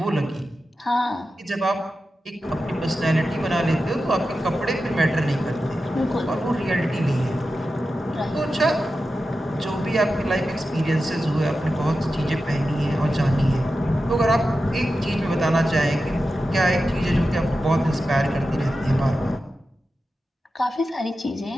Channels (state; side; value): normal; both; correlation 0.92